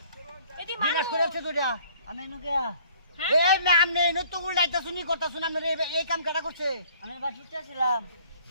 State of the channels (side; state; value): both; inverted; correlation -0.57